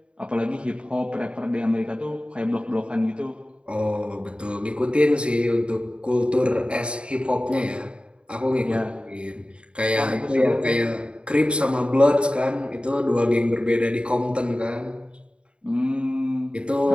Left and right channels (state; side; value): late; left; 0.055 ms